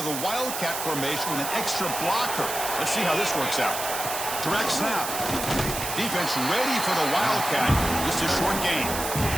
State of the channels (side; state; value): right; noise; hiss, 5 dB below the sound